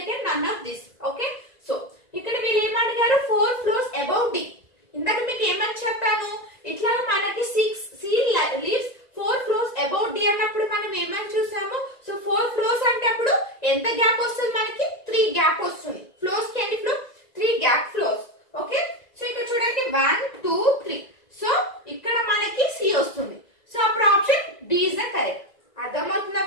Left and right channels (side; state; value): right; late; 1.9 ms